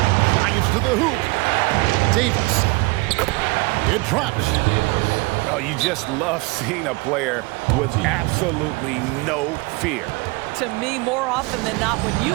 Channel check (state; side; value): quieter; left; 24.9 dB